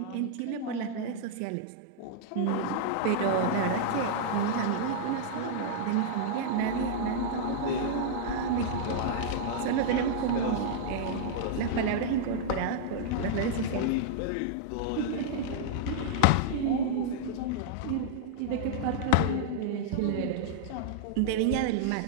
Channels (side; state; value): both; different; correlation -0.01